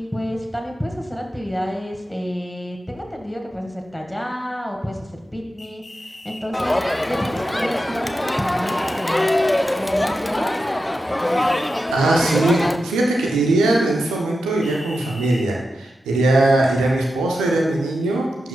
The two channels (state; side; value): normal; both; correlation 0.90